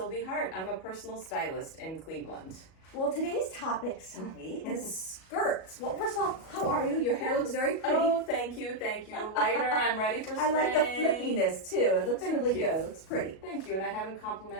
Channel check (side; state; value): right; late; 37 ms